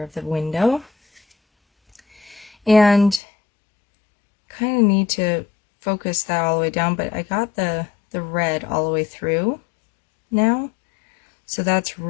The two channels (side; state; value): right; drops out; at 3.2 s